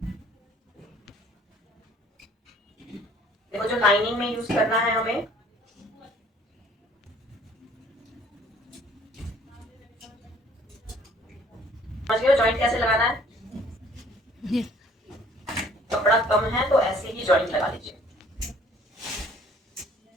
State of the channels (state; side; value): normal; both; correlation 0.56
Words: देखो जो लाइनिंग में यूज करना है हमें, समझ गए जॉइंट कैसे लगाना है। कपड़ा कम है तो ऐसे ही जॉइंट लगा लीजिए।